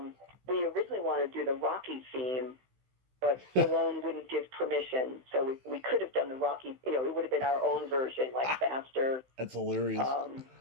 we originally wanted to do the Rocky theme, but Stallone wouldn't give permission. So we could have done the Rocky, it would have been our own version, like faster. That's hilarious.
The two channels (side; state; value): left; late; 16 ms